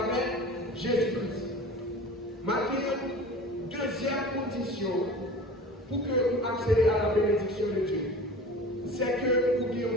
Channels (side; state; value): both; normal; correlation 0.38